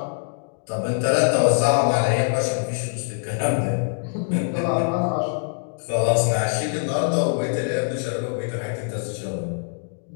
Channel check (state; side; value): silent; right; digital silence